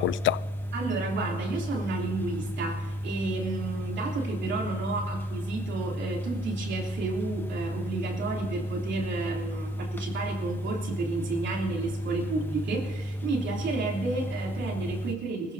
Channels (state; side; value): normal; both; correlation 0.62